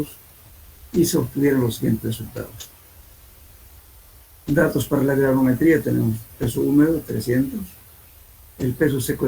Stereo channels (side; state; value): both; identical; correlation 1.00